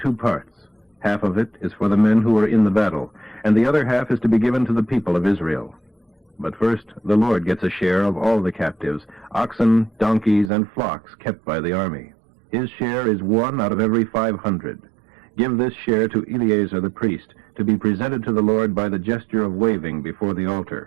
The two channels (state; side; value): drops out; left; at 10.5 s